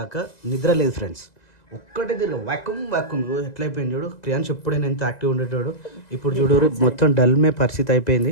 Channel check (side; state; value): right; late; 2.0 ms